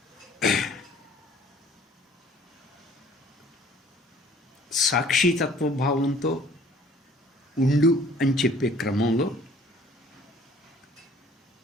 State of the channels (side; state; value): both; normal; correlation 0.55